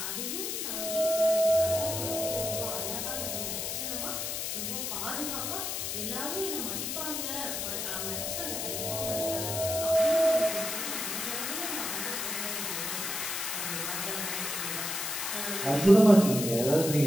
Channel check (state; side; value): noise; left; hiss, 2 dB below the sound